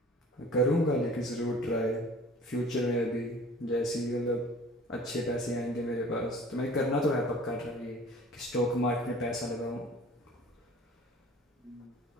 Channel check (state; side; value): normal; both; correlation 0.47